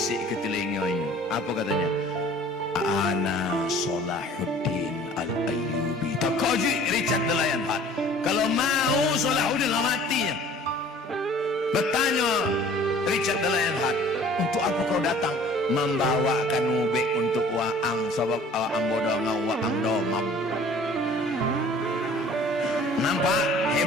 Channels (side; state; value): both; normal; correlation 0.50